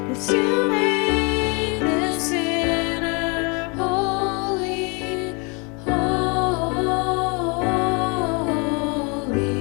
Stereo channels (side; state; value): right; quieter; 31.7 dB